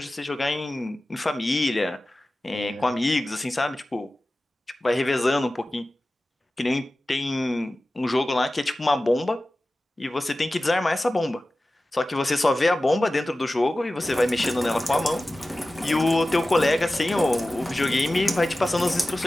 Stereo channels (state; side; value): normal; both; correlation 0.96